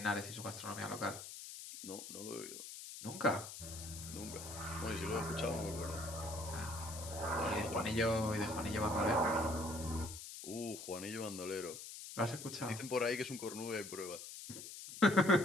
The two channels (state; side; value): noise; left; hiss, 10 dB below the sound